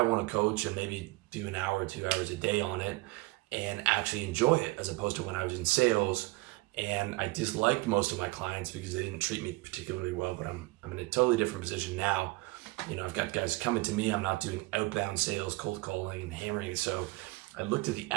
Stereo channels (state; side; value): quieter; left; 22.0 dB